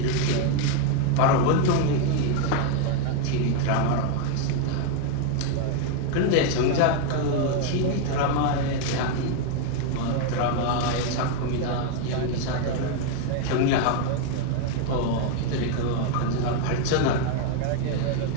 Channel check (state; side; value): different; both; correlation 0.01